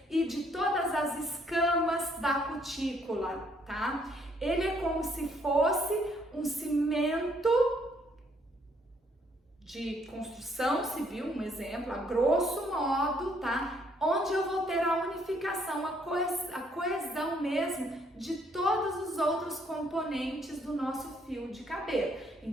e de todas as escamas da cutícula, tá? Ele é como se fosse um cimento de construção civil, um exemplo, a grosso modo, tá? Onde eu vou ter a unificação, a coesão mesmo de todos os outros componentes do nosso fio de cabelo.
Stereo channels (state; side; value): normal; both; correlation 0.68